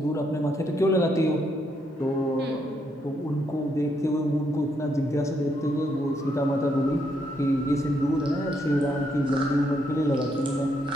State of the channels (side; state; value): both; normal; correlation 0.76